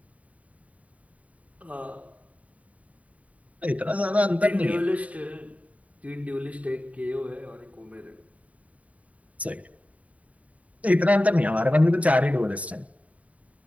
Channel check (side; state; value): left; late; 0.068 ms